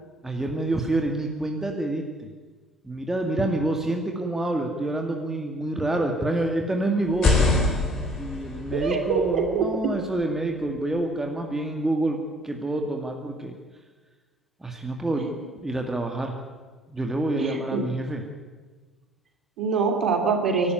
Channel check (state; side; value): normal; both; correlation 0.58